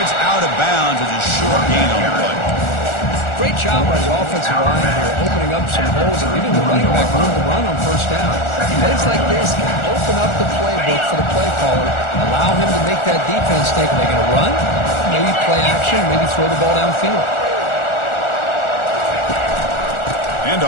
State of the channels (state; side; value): late; right; 1.4 ms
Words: out of bounds as a short gain on the play. Great job by the offensive line here, opening up some holes and giving the running back room to run on first down. Plays like this can open up the playbook for the play caller, allow him to make that defense think, are they going to run? Maybe play action, maybe throw the ball downfield.